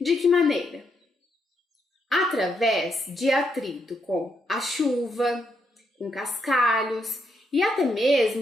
que maneira? Através de atrito com a chuva, com cascalhos e até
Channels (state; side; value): normal; both; correlation 0.78